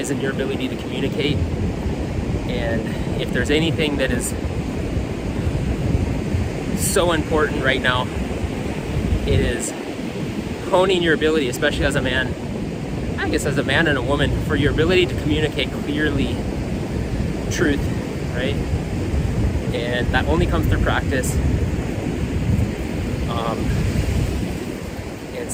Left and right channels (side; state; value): both; identical; correlation 1.00